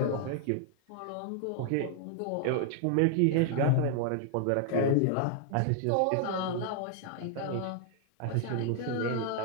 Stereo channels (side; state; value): both; different; correlation 0.00